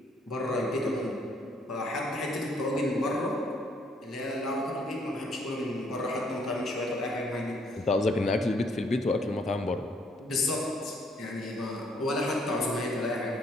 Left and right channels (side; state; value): both; normal; correlation 0.67